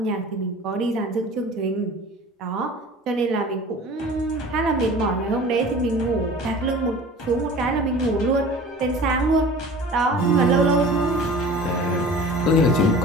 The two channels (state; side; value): normal; both; correlation 0.41